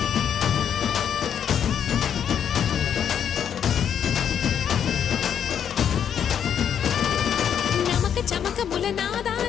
నమక చమక ముల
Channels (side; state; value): right; quieter; 8.6 dB